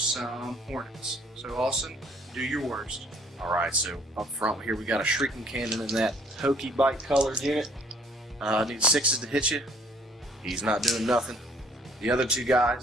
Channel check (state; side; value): normal; both; correlation 0.59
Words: Hornets. So Austin, do your worst. All right, so up front here we got a Shrieking Cannon in that hokey bike colored unit. Need 6s to hit you. He's not doing nothing. The other 2